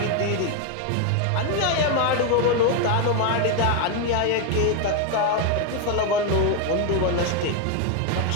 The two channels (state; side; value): different; both; correlation 0.01